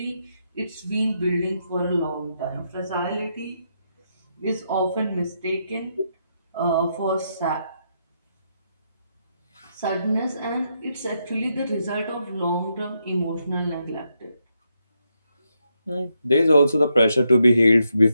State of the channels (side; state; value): both; inverted; correlation -0.80